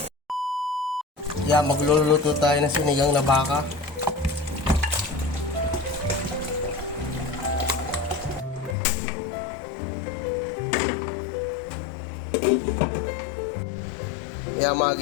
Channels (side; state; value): right; drops out; at 8.8 s